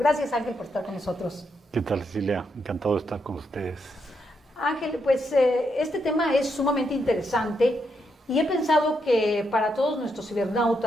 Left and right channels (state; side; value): normal; both; correlation 0.80